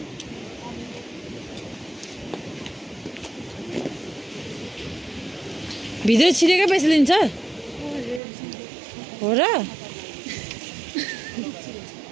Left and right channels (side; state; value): left; drops out; at 8.2 s